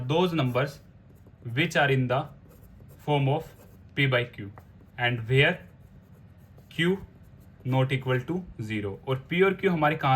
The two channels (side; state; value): both; identical; correlation 1.00